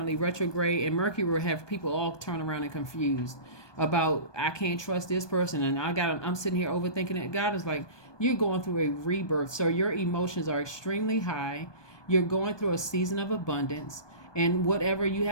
retrograde, and Mercury will have people all turn around and confused about, I can't trust this person, and I'm sitting here overthinking it. God is like, you're going through a rebirth, so your emotions are extremely high. You're going through a season of abundance, and whatever you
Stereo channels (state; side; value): late; right; 1.2 ms